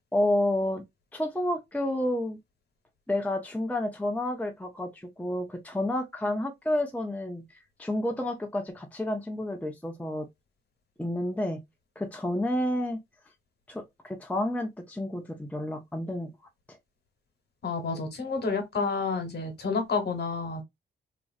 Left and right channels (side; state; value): both; normal; correlation 0.72